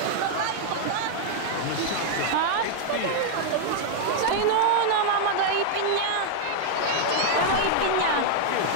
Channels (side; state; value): both; different; correlation -0.01